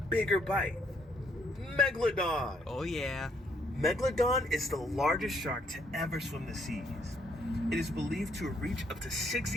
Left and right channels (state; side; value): normal; both; correlation 0.70